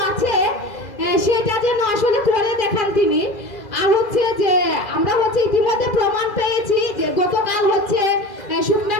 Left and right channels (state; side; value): late; right; 2.0 ms